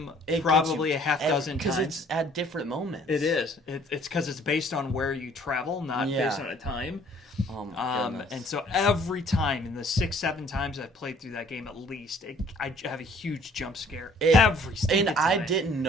probably a half dozen times. Because it's at different moments. It is. It's because it's based on where you travel, not based on a time. Oh my goodness. And so every time, in the 6-7 times I've played through that game at least, I have a huge jump scare every single time. And I didn't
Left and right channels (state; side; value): normal; both; correlation 0.58